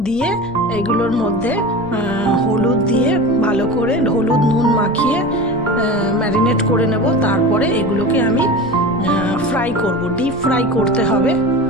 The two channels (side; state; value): right; noise; rumble, 19 dB below the sound